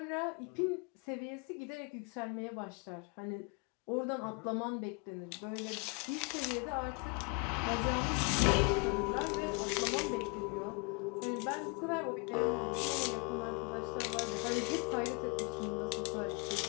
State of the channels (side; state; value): right; quieter; 30.7 dB